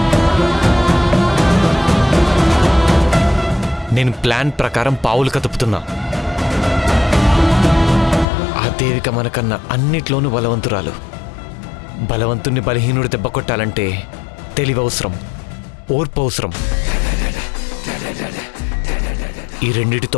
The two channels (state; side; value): drops out; right; at 8.2 s